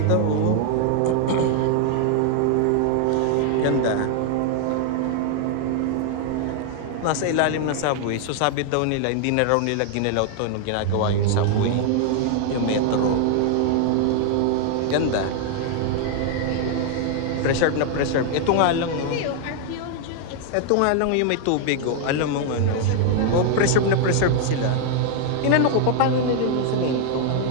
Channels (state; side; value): different; both; correlation 0.00